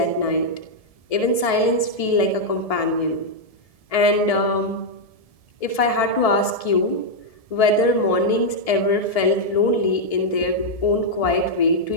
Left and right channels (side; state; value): right; late; 1.7 ms